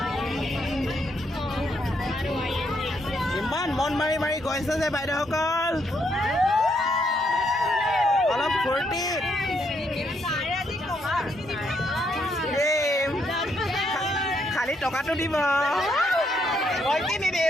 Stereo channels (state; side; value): normal; both; correlation 0.75